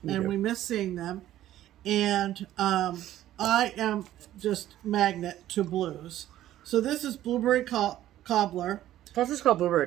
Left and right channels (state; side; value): quieter; left; 13.3 dB